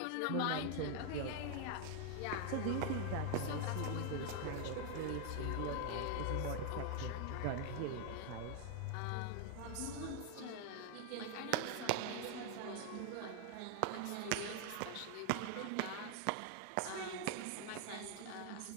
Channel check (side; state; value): both; different; correlation 0.00